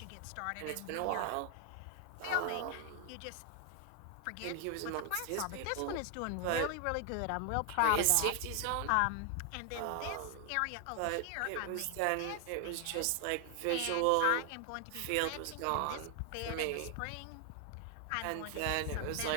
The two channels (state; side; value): different; both; correlation 0.00